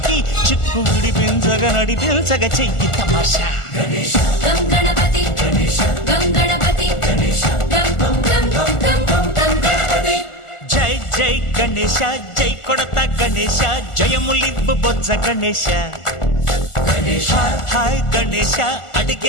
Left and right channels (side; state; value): right; late; 1.4 ms